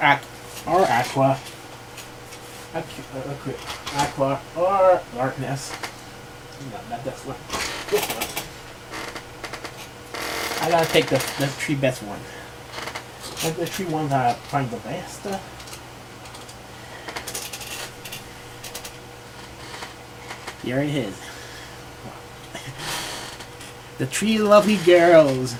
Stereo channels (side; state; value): both; identical; correlation 1.00